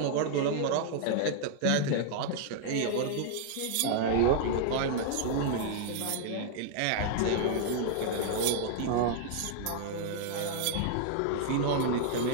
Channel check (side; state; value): both; different; correlation -0.01